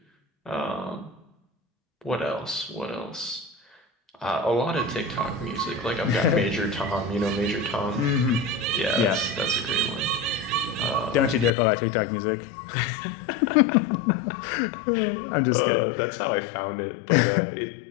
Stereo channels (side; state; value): right; drops out; at 11.5 s